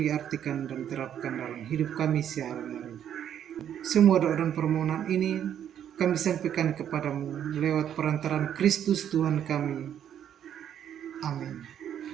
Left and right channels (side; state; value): left; quieter; 9.7 dB